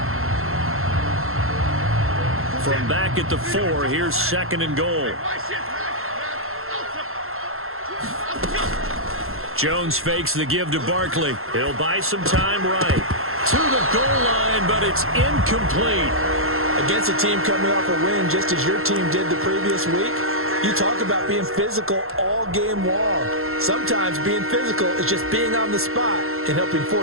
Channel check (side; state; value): left; late; 0.62 ms